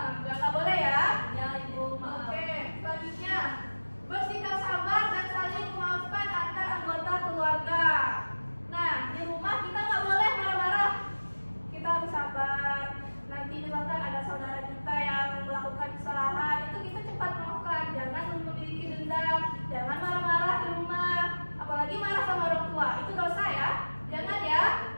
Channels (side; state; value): both; inverted; correlation -1.00